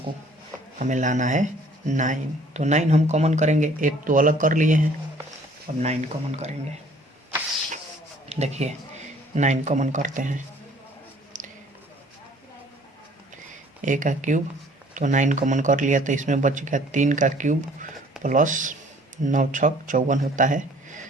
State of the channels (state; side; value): normal; both; correlation 0.56